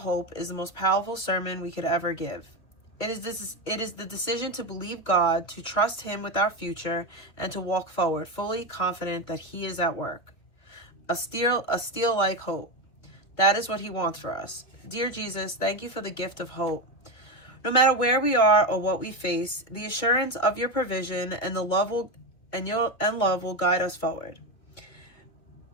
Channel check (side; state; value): right; late; 2.4 ms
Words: is the most powerful sermon we could ever give. It is the decision to believe God, to trust Him with our future, and to walk forward, fully confident that He is at work. A steel-like hope. That is what He wants for us. Dear Jesus, thank you for the gift of hope. No matter where we are or what we face, the assurance of your provision and love will guide us forward.